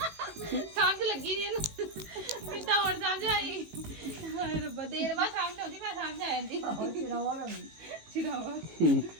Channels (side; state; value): left; late; 18 ms